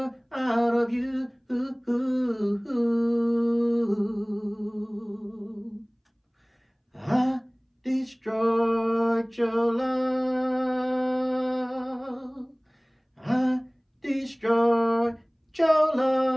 out of you. I destroyed your love. I destroyed your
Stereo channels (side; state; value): both; identical; correlation 1.00